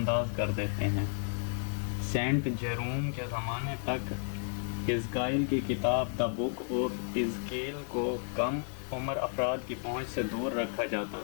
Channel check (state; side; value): silent; right; 56 dB below the other